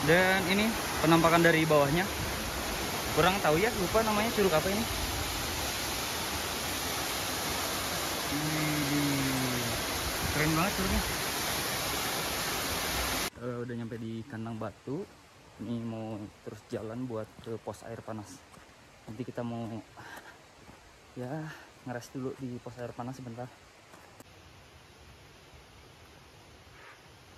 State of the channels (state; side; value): identical; both; correlation 1.00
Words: Dan ini penampakan dari bawahnya. Kurang tahu ya, lupa namanya curug apa ini. Keren banget curugnya. Udah nyampe di kandang batu. Ini mau terus jalan buat ke pos air panas. Nanti kita mau ya ngeres dulu di pos air panas sebentar.